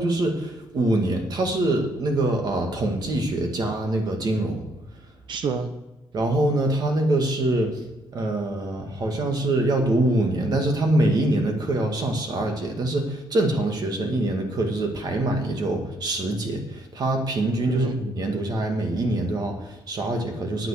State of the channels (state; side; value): normal; both; correlation 0.70